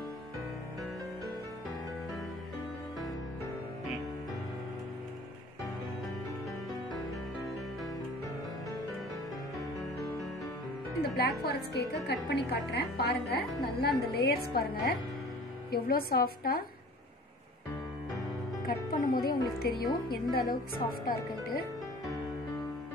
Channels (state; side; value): normal; both; correlation 0.46